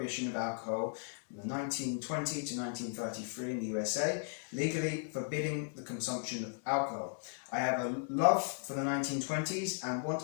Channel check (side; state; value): right; silent; digital silence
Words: of alcohol from 1920 to 1933 in the USA, legally forbidding the consumption of alcohol. I have a love for the 1920s and want